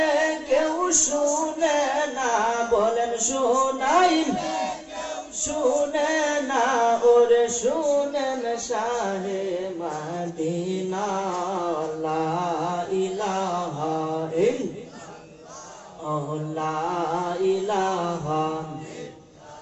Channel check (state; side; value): identical; both; correlation 1.00